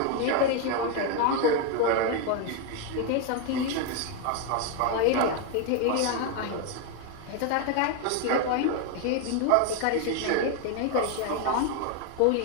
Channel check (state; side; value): different; both; correlation 0.01